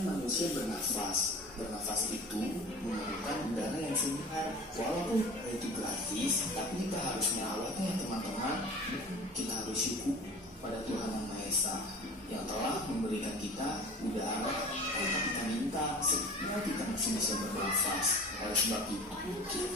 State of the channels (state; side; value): normal; both; correlation 0.39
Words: manusia bernafas. Bernafas itu memerlukan udara yang segar. Walaupun itu gratis, tapi kita harus merawatnya teman-teman. Kita harus syukur pada Tuhan Yang Maha Esa yang telah memberikan kita udara tanpa kita minta, sehingga kita masih bisa bernafas. Oleh sebab itu,